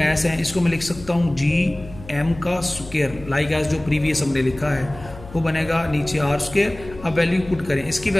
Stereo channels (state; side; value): noise; left; hum, 17 dB below the sound